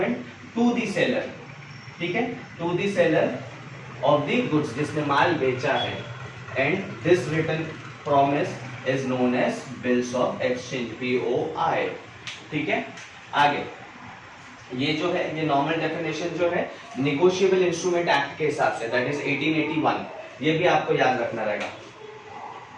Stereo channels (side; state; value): both; identical; correlation 1.00